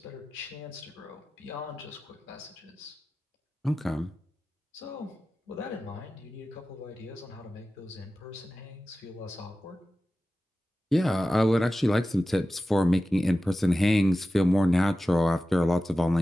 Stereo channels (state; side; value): normal; both; correlation 0.95